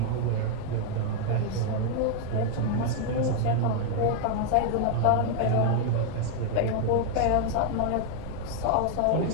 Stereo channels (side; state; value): both; different; correlation 0.00